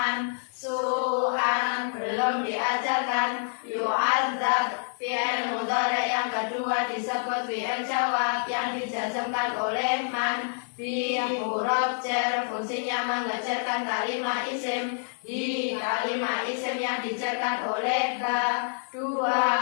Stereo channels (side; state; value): right; silent; 60 dB below the other